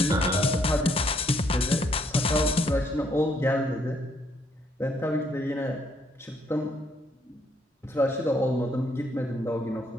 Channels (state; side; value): normal; both; correlation 0.70